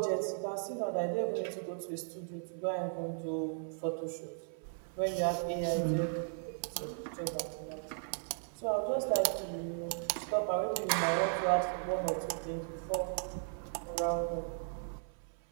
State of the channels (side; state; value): left; silent; 54 dB below the other